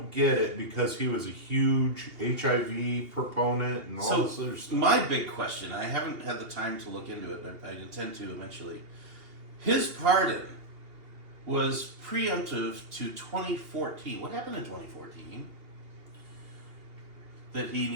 get it because he was a huge HIV proponent and all this other stuff. My big question, I haven't had the time to look into it, but I intend to eventually. His pardon was preemptive to 2014. What happened in 2014 that he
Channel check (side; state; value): left; late; 2.8 ms